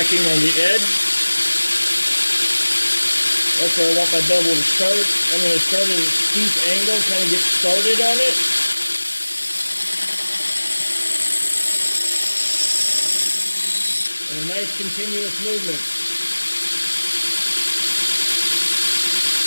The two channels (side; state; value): both; inverted; correlation -1.00